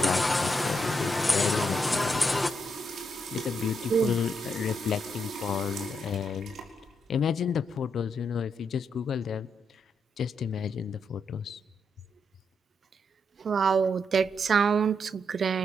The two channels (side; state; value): both; normal; correlation 0.80